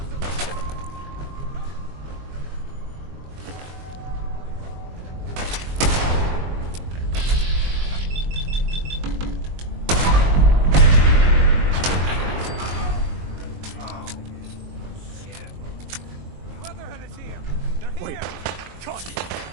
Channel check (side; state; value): left; late; 22 ms